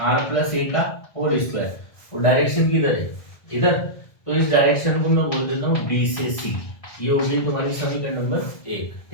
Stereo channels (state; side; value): late; right; 1.7 ms